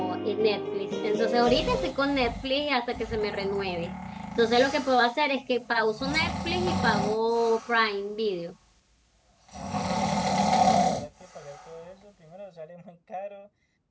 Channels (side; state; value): both; identical; correlation 1.00